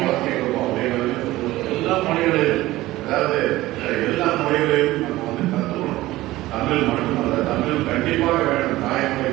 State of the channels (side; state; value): left; quieter; 17.2 dB